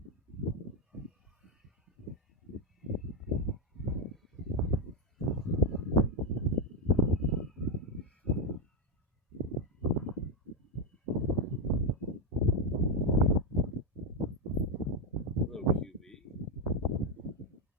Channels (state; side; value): normal; both; correlation 0.05